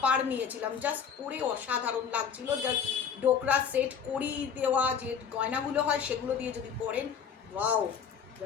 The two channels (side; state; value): right; quieter; 7.1 dB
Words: নিয়েছিলাম, জাস্ট পরে অসাধারণ লাগছিল। জাস্ট ডোকরা সেট, কড়ি দেওয়া যে গয়নাগুলো হয় সেগুলো দিয়ে যদি পরেন, ওয়াও,